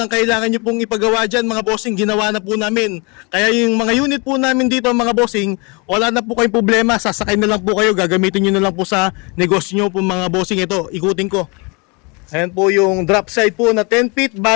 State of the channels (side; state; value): right; quieter; 29.9 dB